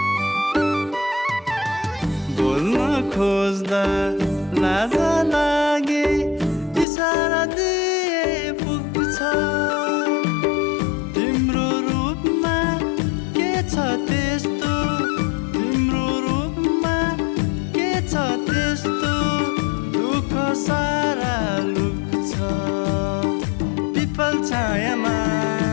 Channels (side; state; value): right; drops out; at 6.9 s